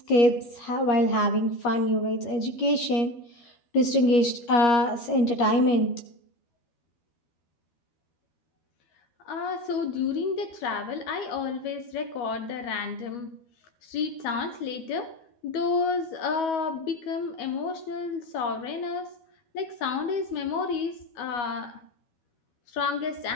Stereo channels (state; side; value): late; right; 12 ms